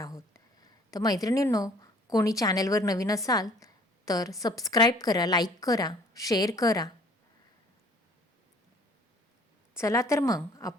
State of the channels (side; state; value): both; normal; correlation 0.55